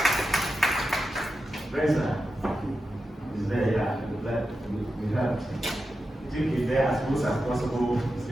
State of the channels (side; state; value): both; normal; correlation 0.90